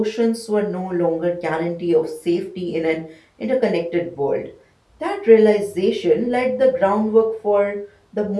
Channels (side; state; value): both; identical; correlation 1.00